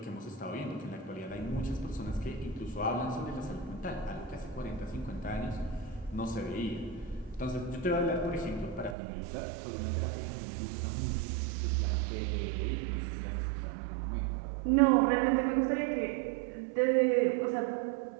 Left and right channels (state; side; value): drops out; left; at 9.0 s